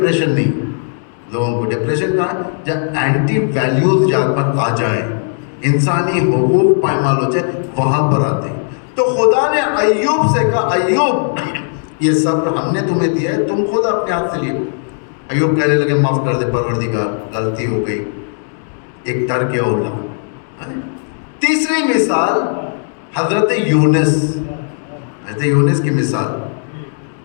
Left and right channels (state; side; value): silent; right; digital silence